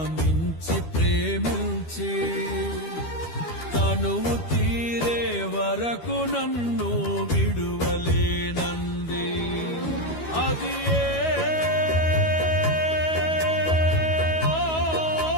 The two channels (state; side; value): late; right; 12 ms